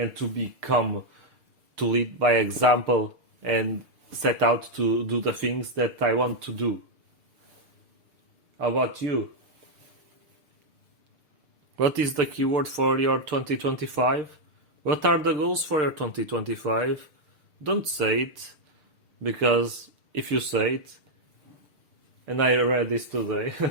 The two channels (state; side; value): late; left; 6.7 ms